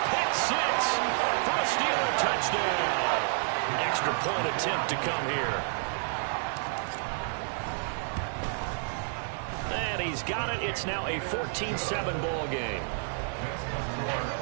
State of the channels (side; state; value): left; silent; 58 dB below the other